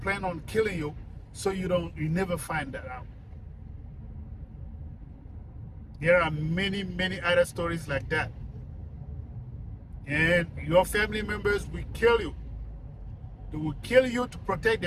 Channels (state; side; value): identical; both; correlation 1.00